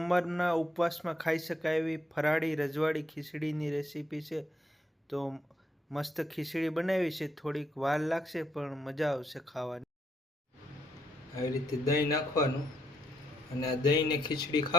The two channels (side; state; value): both; normal; correlation 0.77